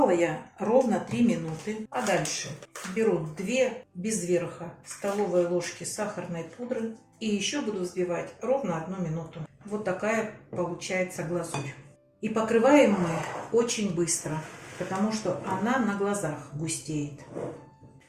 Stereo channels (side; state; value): both; identical; correlation 1.00